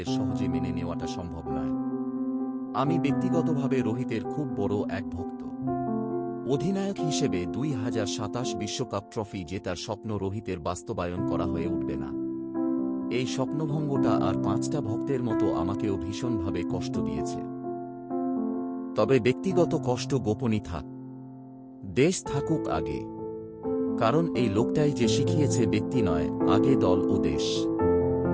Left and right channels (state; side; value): identical; both; correlation 1.00